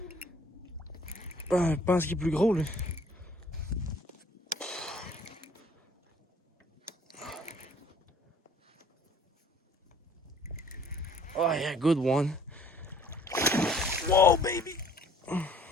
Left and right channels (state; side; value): normal; both; correlation 0.55